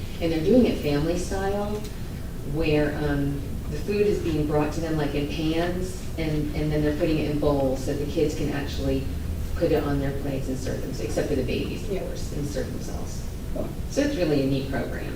And they're doing it family style, where the food is being brought to them like in pans, and then they're putting it in bowls, so the kids can actually put it on their plates and serve them, except for the babies, of course, and serve themselves. So it's really a neat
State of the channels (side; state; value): both; identical; correlation 1.00